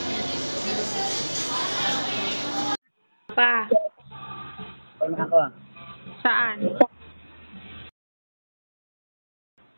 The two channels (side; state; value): both; inverted; correlation -1.00